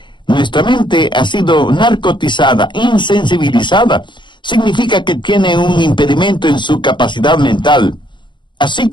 nuestra mente ha sido narcotizada, insensibilizada. Significa que tiene un impedimento en su capacidad mental. Así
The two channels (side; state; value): right; late; 0.23 ms